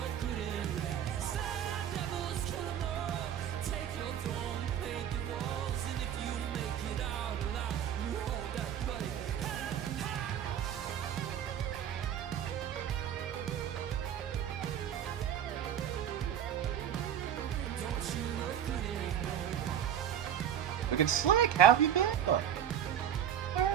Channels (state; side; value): quieter; left; 9.6 dB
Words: Look at Slack, how have you been?